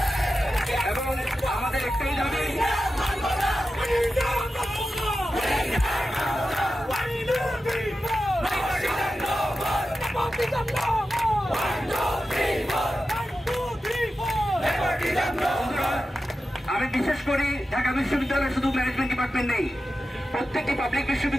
এবং আমাদের একটাই দাবি, আমি বিশেষ করি ঢাকা বিশ্ববিদ্যালয়ে শুধু ম্যানেজমেন্ট ডিপার্টমেন্ট নেই, প্রত্যেকটি পাবলিক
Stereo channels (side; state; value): both; normal; correlation 0.92